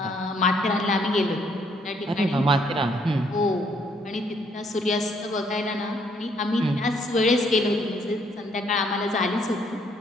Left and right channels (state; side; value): normal; both; correlation 0.68